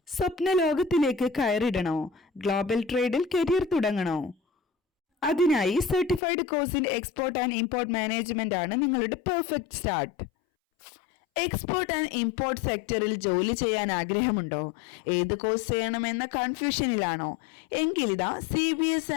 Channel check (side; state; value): right; drops out; at 6.2 s